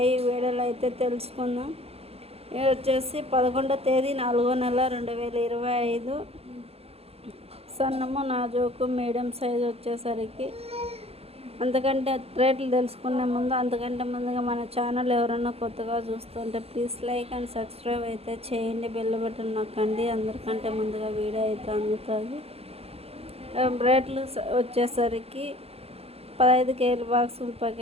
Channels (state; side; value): late; left; 0.29 ms